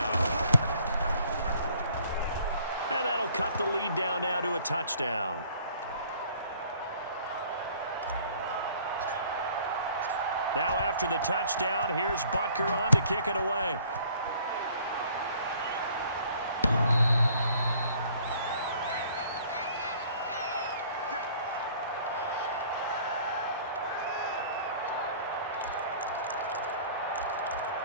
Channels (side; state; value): both; inverted; correlation -0.56